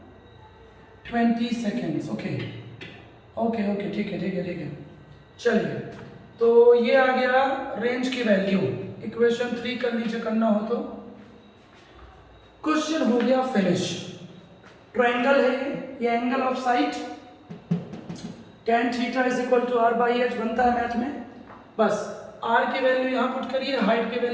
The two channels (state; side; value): identical; both; correlation 1.00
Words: 20 सेकेंड्स। ओके ओके ओके, ठीक है ठीक है ठीक है। चलिए, तो ये आ गया रेंज की वैल्यू। इक्वेशन 3 कर लीजिए, करना हो तो। क्वेश्चन हो गया फिनिश। ट्रायंगल है ये angle of sight, tan theta is equal to r by h बनता है मैथ में। बस r की वैल्यू यहाँ पुट करिए, हाइट की